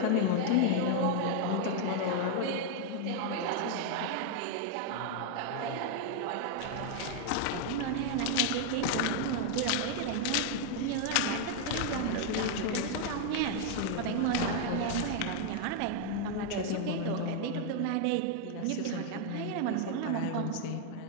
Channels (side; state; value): both; different; correlation 0.00